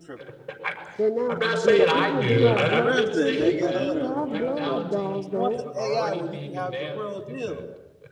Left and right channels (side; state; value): both; identical; correlation 1.00